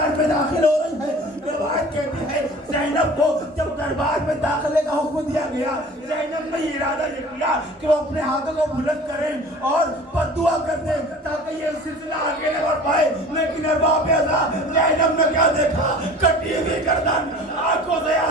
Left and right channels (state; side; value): normal; both; correlation 0.43